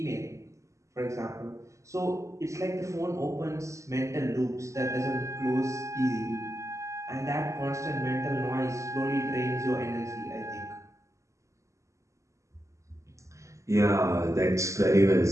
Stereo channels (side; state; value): left; late; 0.15 ms